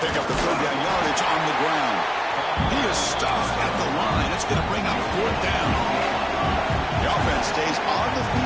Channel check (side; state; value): both; identical; correlation 1.00